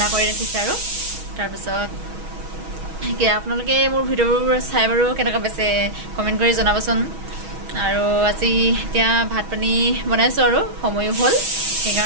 কৰি ৰাখিছে আৰু তাৰপিছত আপোনালোকে মোৰ ভিডিঅ'বোৰ চাই বাৰু কেনেকুৱা পাইছে কমেণ্ট কৰি জনাবচোন আৰু আজি এতিয়া ভাত পানী বনাইছোঁ আৰু সময়ো হ'ল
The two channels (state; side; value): late; left; 6.3 ms